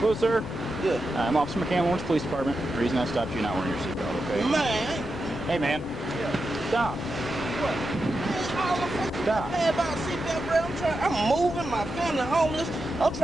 Hello, sir. Yeah. I'm Officer McCann, Lawrence Police Department. The reason I stopped you not wearing your seatbelt, okay? Man. Hey, man. Yeah. Stop. What? Man, all the fucking Stop. mad about seatbelt, bro. I'm moving, my family homeless. I'm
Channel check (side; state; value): both; normal; correlation 0.88